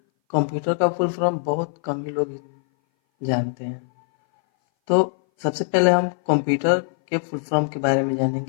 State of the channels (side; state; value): right; silent; 59 dB below the other